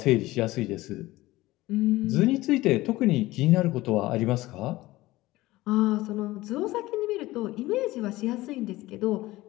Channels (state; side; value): quieter; right; 18.2 dB